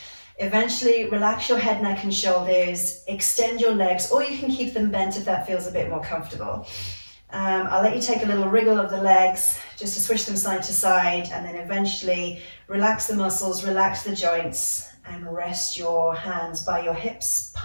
Eventually, relax your head, neck, and shoulders, extend your legs, or you can keep them bent if that feels a bit more comfortable. I'll let you take a little wriggle of the legs, just to switch them side to side, and then eventually relax the muscles, relax the joints, and rest your hands by your hips,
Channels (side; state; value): both; inverted; correlation -1.00